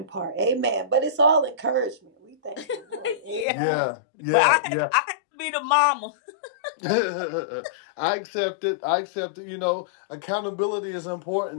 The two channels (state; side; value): drops out; right; at 3.5 s